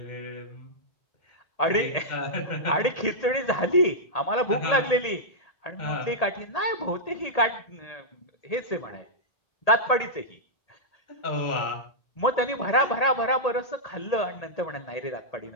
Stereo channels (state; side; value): late; right; 1.8 ms